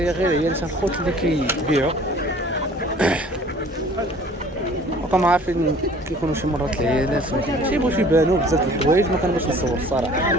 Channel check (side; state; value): both; normal; correlation 0.50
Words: غير هي اللي الخوت اللي كيبيعوا. وكما عارفين كيكونوا شي مرات العيالات ما كيبغوش يبانوا بزاف د الحوايج، ما كنبغيش نصور الصراحه.